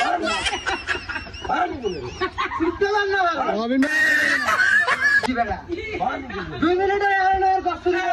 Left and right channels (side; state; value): both; identical; correlation 1.00